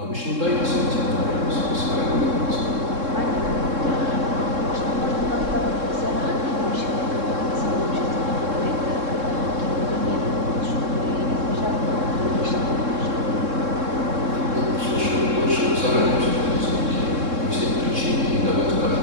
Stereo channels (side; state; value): left; late; 3.7 ms